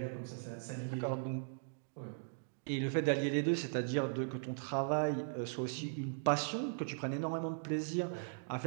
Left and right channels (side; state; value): left; silent; digital silence